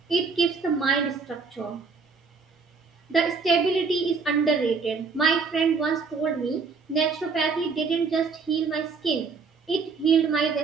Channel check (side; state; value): left; quieter; 4.9 dB